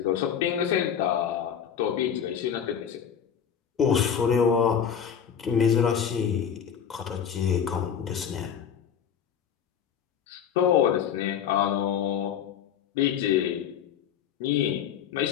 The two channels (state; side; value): quieter; right; 8.2 dB